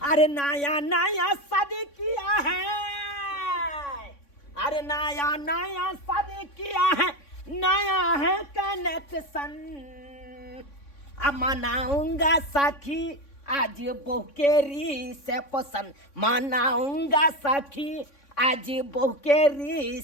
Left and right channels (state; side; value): late; right; 3.6 ms